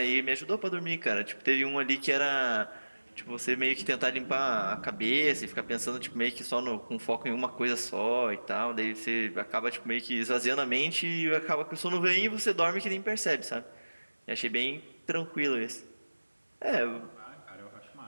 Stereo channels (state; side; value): inverted; both; correlation -1.00